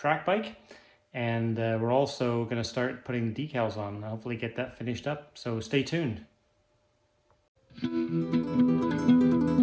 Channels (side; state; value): both; identical; correlation 1.00